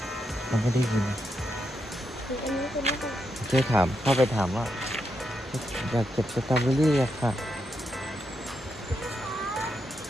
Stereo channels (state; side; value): normal; both; correlation 0.83